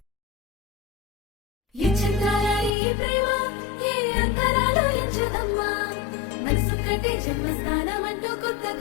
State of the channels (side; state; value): right; drops out; at 2.7 s